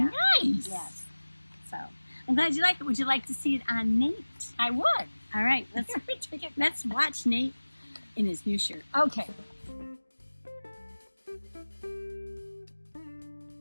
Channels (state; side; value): inverted; both; correlation -1.00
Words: Nice. Yes. So I'm glad you like it. Would you like to see it on Nate? I would. All right. Let's watch Nate in his new shirt. Okay.